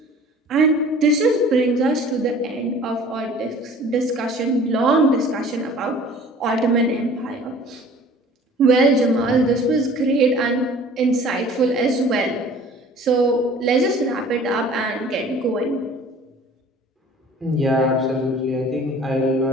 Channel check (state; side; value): normal; both; correlation 0.48